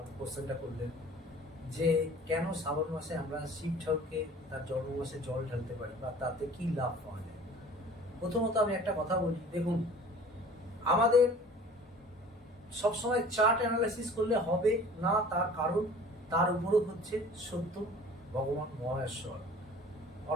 কোশ্চেনটা করলেন যে কেন শ্রাবণ মাসে আমরা শিব ঠাকুরকে তার জন্ম মাসে জল ঢালতে পারি বা তাতে কি লাভ পাওয়া যায়। প্রথমত আমি একটা কথা বলি, দেখুন আমাদের সবসময় চার্ট অ্যানালাইসিস করলে হবে না, তার কারণ তার উপরও হচ্ছে সত্য ভগবান মহেশ্বর,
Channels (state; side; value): normal; both; correlation 0.46